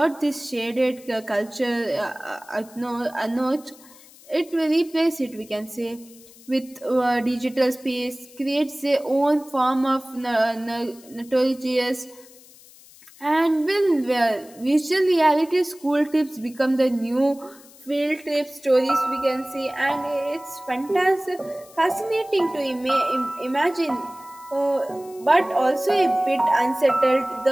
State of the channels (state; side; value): noise; left; hiss, 23 dB below the sound